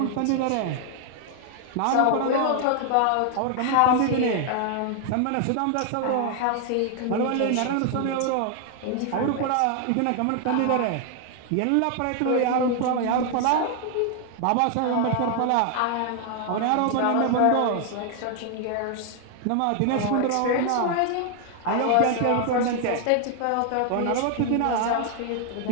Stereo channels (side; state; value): both; different; correlation 0.00